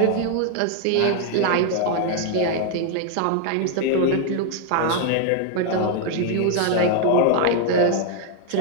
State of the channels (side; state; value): both; different; correlation 0.00